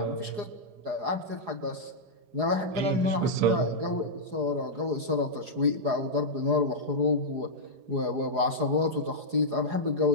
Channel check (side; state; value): left; late; 4.8 ms